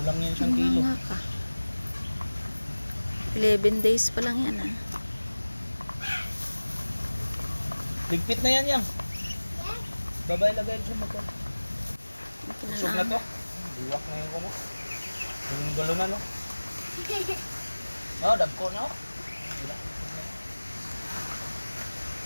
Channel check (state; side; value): inverted; both; correlation -1.00